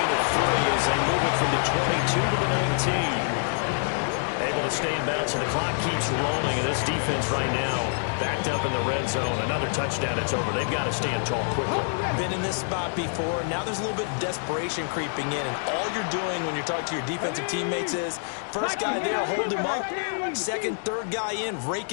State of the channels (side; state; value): right; silent; digital silence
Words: of 3 as they move it from the 22 to the 19. Able to stay in bounds, and the clock keeps rolling. And this defense right now backed up in the red zone. Another touchdown, it's over. They've got to stand tall quickly. Been in this spot before. Now there's a little bit of desperation creeping in. And all you're doing when you're talking to your defensive teammates is, first guy there, hold him up. Second, third guy in, rake